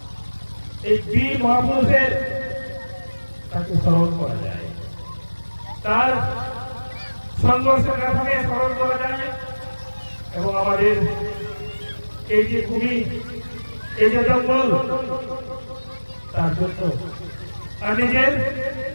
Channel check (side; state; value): both; inverted; correlation -1.00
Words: এই বীর মহাপুরুষের তাকে স্মরণ করা যায়, তার সংঘর্ষের কথাকে স্মরণ করা যায়, এবং আমাদের এই যে ভূমি, এই যে জঙ্গল, তার জন্য আর নিজের